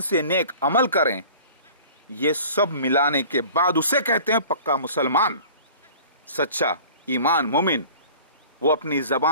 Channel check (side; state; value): both; inverted; correlation -0.45